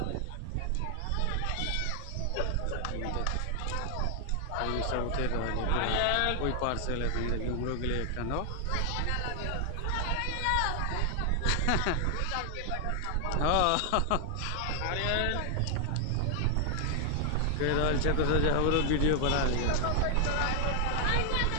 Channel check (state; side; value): different; both; correlation 0.00